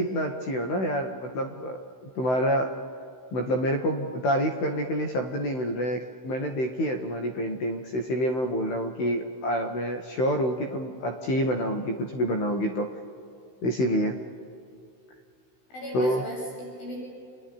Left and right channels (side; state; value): right; late; 16 ms